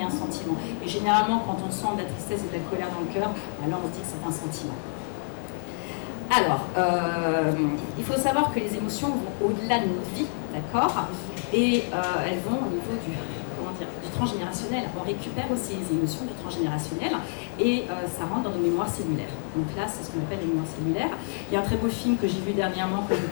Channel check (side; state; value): right; silent; digital silence